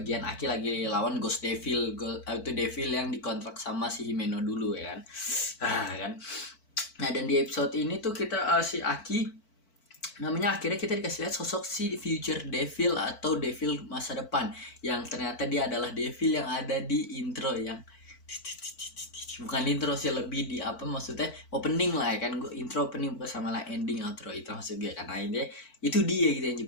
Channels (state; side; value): late; right; 4.5 ms